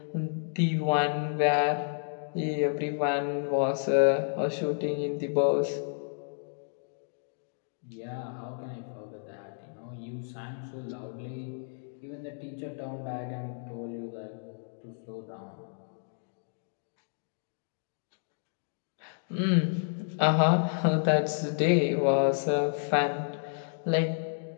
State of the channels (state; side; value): silent; right; digital silence